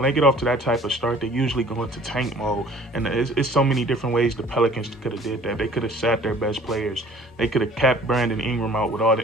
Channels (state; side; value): normal; both; correlation 0.51